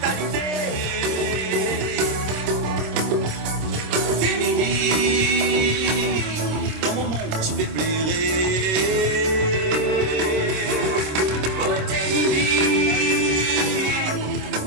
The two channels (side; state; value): left; late; 26 ms